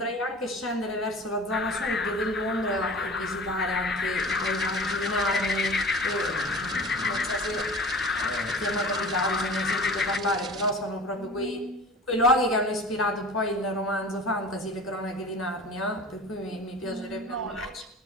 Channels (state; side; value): normal; both; correlation 0.39